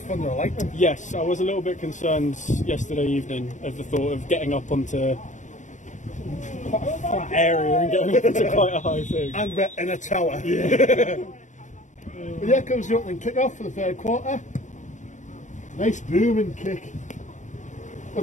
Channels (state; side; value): late; right; 0.36 ms